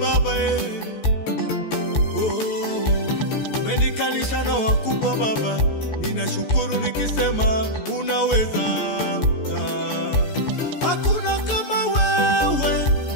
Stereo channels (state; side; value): late; right; 14 ms